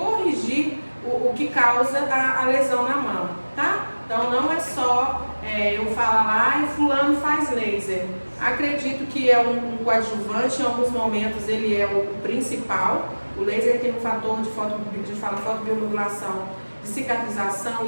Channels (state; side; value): inverted; both; correlation -1.00